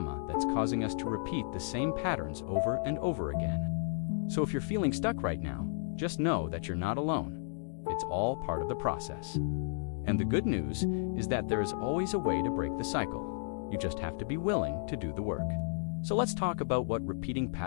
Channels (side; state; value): right; silent; digital silence